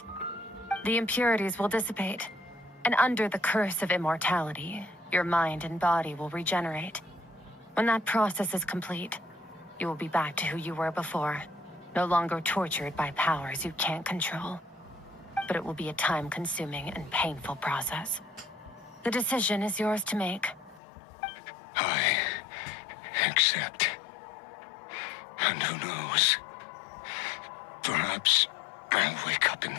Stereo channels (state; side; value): drops out; right; at 20.8 s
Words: The impurities will dissipate, and under the curse of immortality, your mind and body will regenerate. When that process is complete, you will be back to who you were before, no longer tortured by powers you can't control. But it will be a time-consuming and painful process. The decision is yours to make. I accept. And who knows? Perhaps I'll wake up in